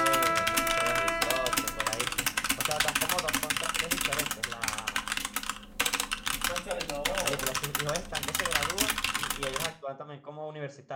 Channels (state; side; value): identical; both; correlation 1.00